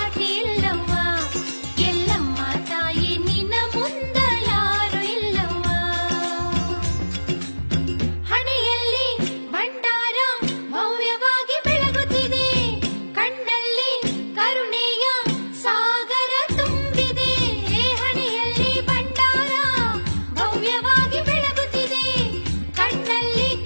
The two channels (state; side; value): inverted; both; correlation -1.00